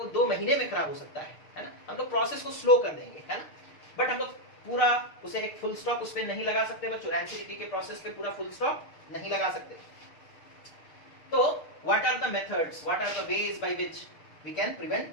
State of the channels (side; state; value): right; late; 6.5 ms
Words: 2 महीने में खराब हो सकता है ना? हम लोग प्रोसेस को स्लो कर देंगे, है ना? बट हम लोग पूरा उसे एक फुल स्टॉप उस पे नहीं लगा सकते बच्चों, रैंसिडिटी के प्रोसेस पे पूरा फुल स्टॉप नहीं लगा सकते। तो what are the methods, what are the ways by which we can